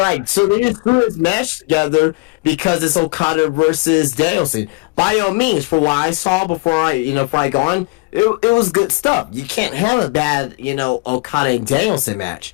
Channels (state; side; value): quieter; right; 26.1 dB